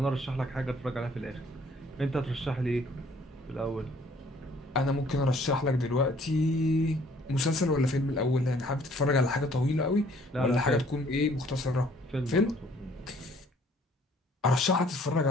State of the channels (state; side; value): normal; both; correlation 0.59